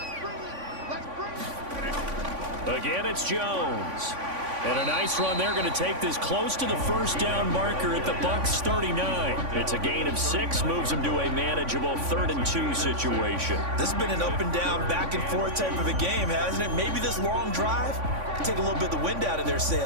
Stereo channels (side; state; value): left; late; 3.5 ms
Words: Again, it's Jones. And a nice run. They're going to take this close to the first down marker at the Bucs 39. It's a gain of 6, moves them to a manageable 3rd and 2 situation. This has been an up and down, back and forth type of a game, hasn't it? Maybe this long drive can take a little bit of the wind out of their